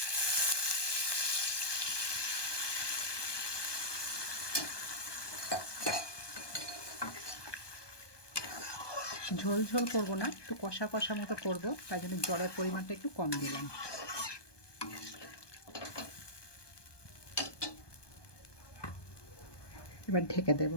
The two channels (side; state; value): right; late; 1.2 ms